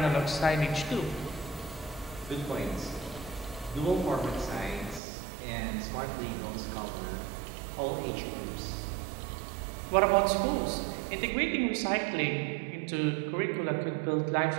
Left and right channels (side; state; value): left; drops out; at 5.0 s